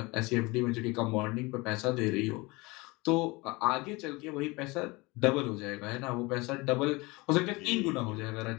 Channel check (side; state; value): right; quieter; 24.2 dB